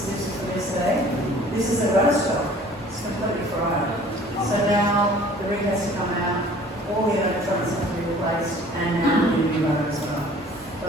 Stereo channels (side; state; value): both; normal; correlation 0.50